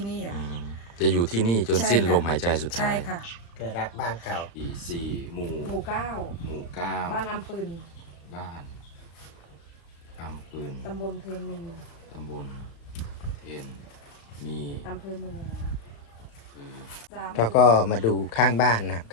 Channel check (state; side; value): late; right; 35 ms